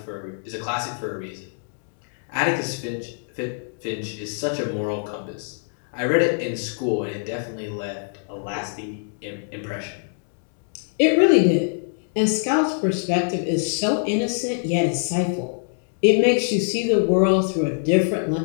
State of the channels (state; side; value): silent; right; digital silence